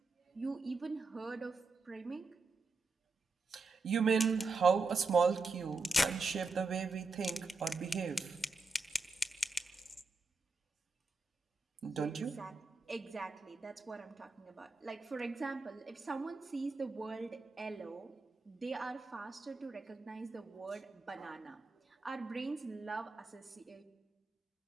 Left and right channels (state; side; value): quieter; left; 3.7 dB